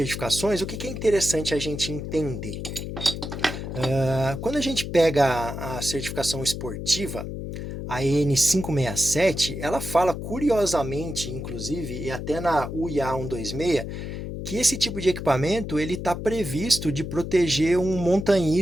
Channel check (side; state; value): left; noise; hum, 6 dB below the sound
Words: o que é interessante a gente entender? Quando a gente pega a certificação esportiva, a EN567, ela fala curiosamente, inclusive, e até na UIA 126, que esse tipo de equipamento ele está previsto de proteger um